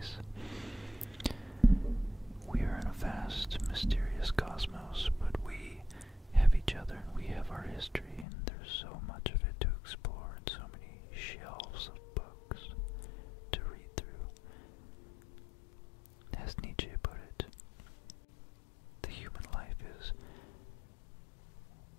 We are in a vast, mysterious cosmos, but we have each other and we have our history, and there's so much of it to explore and so many shelves of books to read through. As Nietzsche put it, the human life is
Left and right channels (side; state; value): right; drops out; at 8.2 s